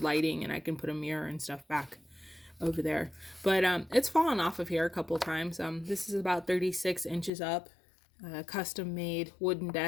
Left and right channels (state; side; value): drops out; right; at 7.3 s